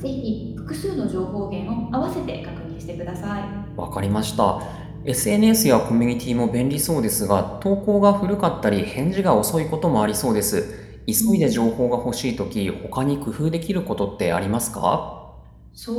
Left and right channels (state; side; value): identical; both; correlation 1.00